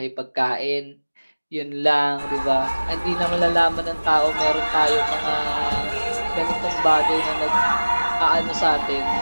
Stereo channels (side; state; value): both; inverted; correlation -1.00